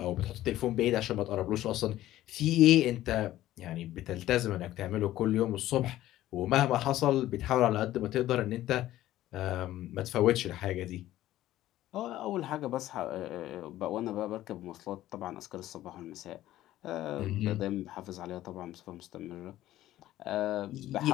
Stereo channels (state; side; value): quieter; right; 14.4 dB